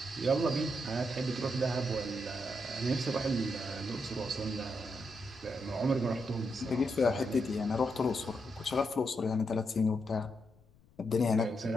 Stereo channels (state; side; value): noise; left; rumble, 29 dB below the sound